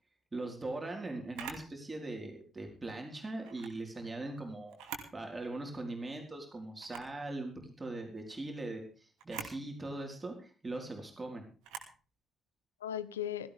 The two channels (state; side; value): normal; both; correlation 0.71